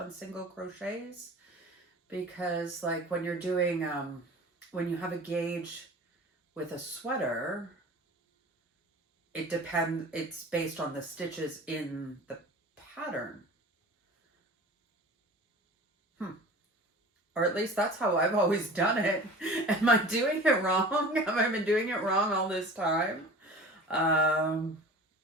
single crochets? Because like when you're doing, when you have a gauge with a sweater, it's based on the stitches in the pattern. Or at least that's how I've always done it. Am I doing it wrong? Have I been doing it wrong all this time?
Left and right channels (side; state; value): both; normal; correlation 0.40